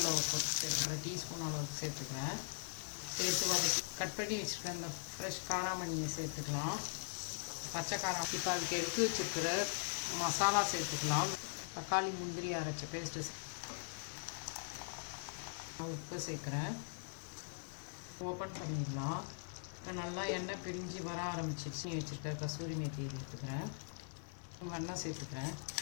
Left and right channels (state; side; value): silent; right; 50 dB below the other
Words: சேர்த்துக்கிறேன், டீஸ்பூன் அளவுக்கு சேர்த்துக்கிறேன். சேர்த்து வதக்கி கட் பண்ணி வச்சுருக்கேன் இந்த ஃப்ரெஷ் காராமணியை சேர்த்துக்கலாம். பச்சை காரம் இப்போ அதுக்கு எடுத்து வச்சுருக்கிற மசாலா சேர்த்துக்கலாம். தக்காளி முந்திரி அரைச்ச பேஸ்ட்டு உப்பு சேர்க்குறேன். ஓப்பன் பண்ணிடலாம். இப்போ நல்லா எண்ணெய் பிரிஞ்சு வர ஆரம்பிச்சிருச்சு. வச்சுருக்க கசூரி மேத்தியை சேர்த்துக்கிறேன். வெண்ணெய் சேர்த்துக்கிறேன்.